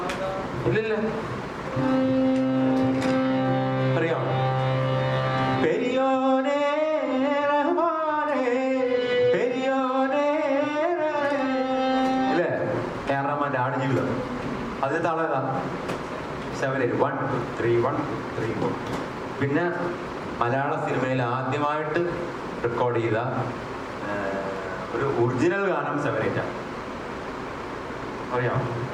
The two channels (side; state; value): both; identical; correlation 1.00